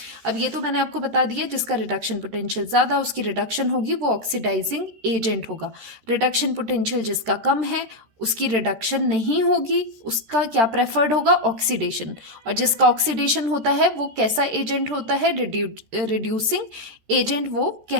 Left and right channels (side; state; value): left; late; 13 ms